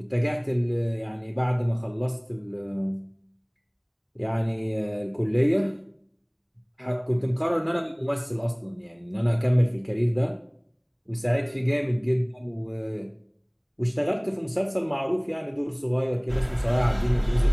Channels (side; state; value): both; identical; correlation 1.00